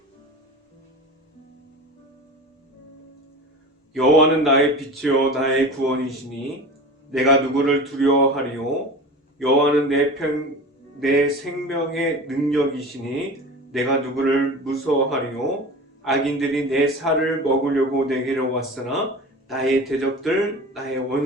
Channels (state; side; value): normal; both; correlation 0.34